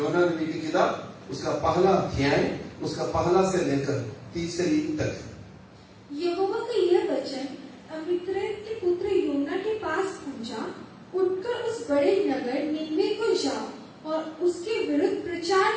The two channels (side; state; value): both; identical; correlation 1.00